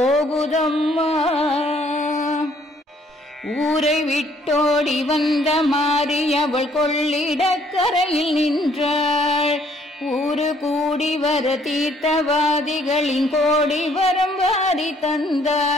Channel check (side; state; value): both; normal; correlation 0.64